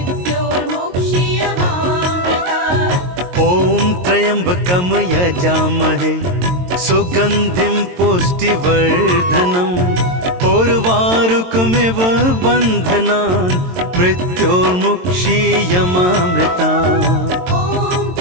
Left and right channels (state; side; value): late; left; 22 ms